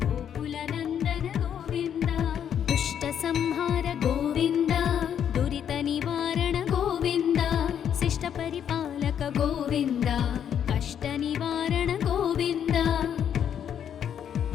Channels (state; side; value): quieter; right; 8.9 dB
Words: గోకుల నందన గోవింద దుష్ట సంహార గోవింద దురిత నివారణ గోవింద శిష్ట పరిపాలక గోవింద కష్ట నివారణ గోవింద